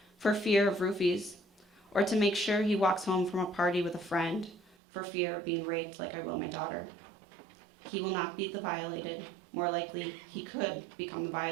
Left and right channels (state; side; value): drops out; left; at 4.8 s